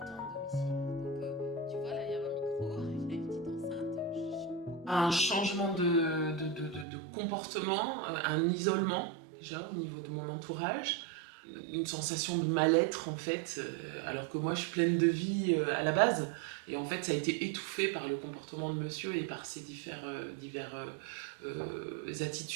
à domicile. Donc, tu vois, là, il y a un micro, il y a une petite enceinte. Un changement de comportement, un isolement déjà au niveau de mon entourage, une sensation de mal-être en fait, alors que moi je suis pleine de vie à la base, et en fait ça a été étouffé par le comportement de monsieur et par ses divers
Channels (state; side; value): drops out; left; at 6.9 s